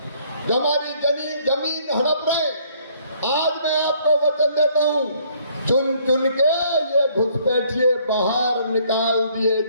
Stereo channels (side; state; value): both; inverted; correlation -0.63